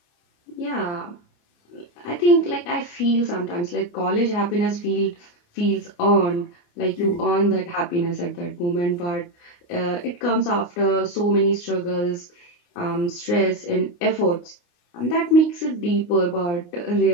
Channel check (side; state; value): right; late; 29 ms